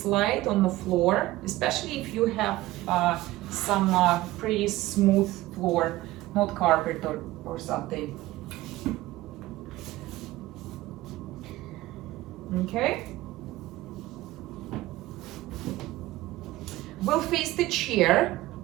on the floor, especially if you have some pretty smooth floor, not carpet or something. Okay. We'll face the chair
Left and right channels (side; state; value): left; quieter; 17.2 dB